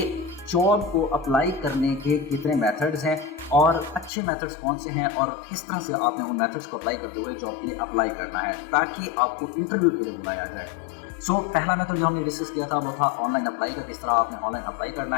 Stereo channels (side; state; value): right; drops out; at 4.1 s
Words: जॉब को अप्लाई करने के कितने मेथड्स हैं और अच्छे मेथड्स कौन से हैं और किस तरह से आपने उन मेथड्स को अप्लाई करते हुए जॉब के लिए अप्लाई करना है ताकि आपको इंटरव्यू के लिए बुलाया जाए। सो पहला मेथड जो हमने डिस्कस किया था वो था ऑनलाइन अप्लाई का, किस तरह आपने ऑनलाइन अप्लाई करना